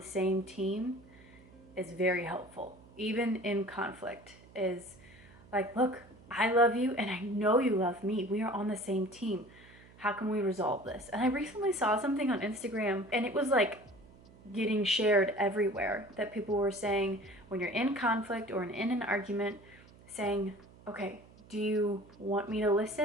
same team is very helpful. Even in conflict is like, look, I love you and I know you love me. We are on the same team. How can we resolve this? And I recently saw something on Instagram and it was like getting shared everywhere that people were saying when you're in conflict or in an argument, saying, okay, do you want me to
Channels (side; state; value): right; noise; hum, 24 dB below the sound